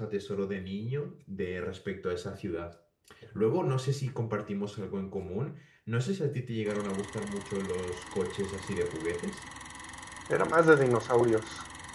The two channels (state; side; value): identical; both; correlation 1.00